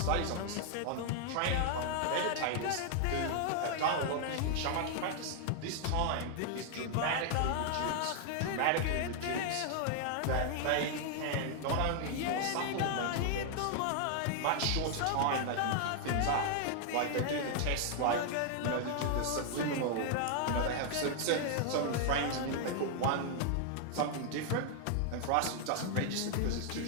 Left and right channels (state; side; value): different; both; correlation 0.00